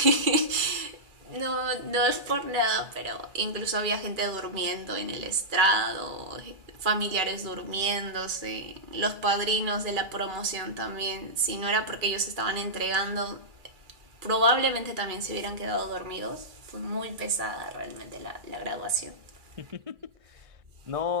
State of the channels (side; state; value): left; late; 2.3 ms